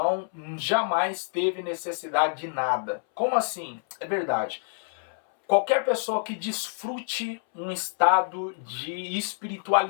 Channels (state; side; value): silent; right; 60 dB below the other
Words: jamais teve necessidade de nada. Como assim? É verdade. Qualquer pessoa que desfrute um estado de